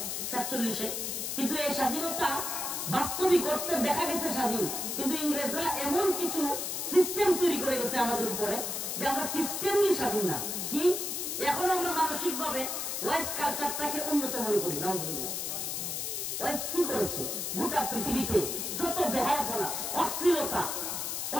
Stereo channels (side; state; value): left; noise; hiss, 3 dB below the sound